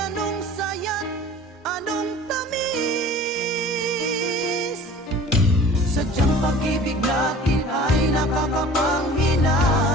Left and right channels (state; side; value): normal; both; correlation 0.44